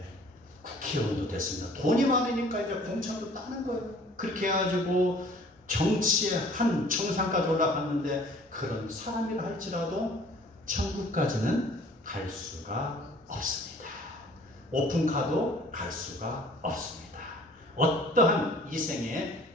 국회의원도 됐습니다. 돈이 많으니까 이제 공천도 따는 거예요. 그렇게 해가지고 정치의 한 정상까지 올라갔는데 그런 사람이라 할지라도 천국까지는 갈 수가 없습니다. 오픈카도 갈 수가 없습니다. 어떠한 이생의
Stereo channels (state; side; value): normal; both; correlation 0.52